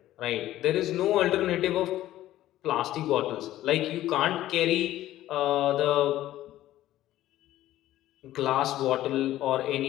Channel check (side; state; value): right; quieter; 14.2 dB